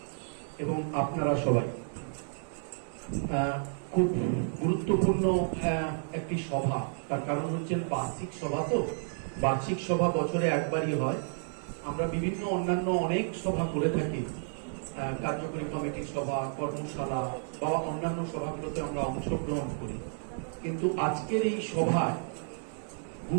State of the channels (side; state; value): left; silent; digital silence